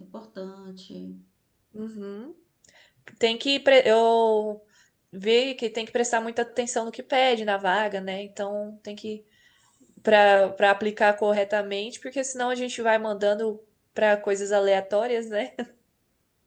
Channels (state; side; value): identical; both; correlation 1.00